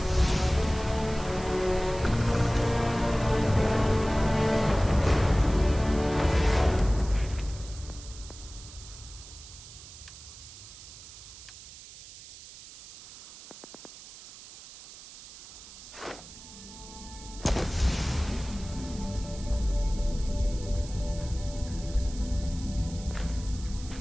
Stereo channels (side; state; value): right; noise; hiss, 16 dB below the sound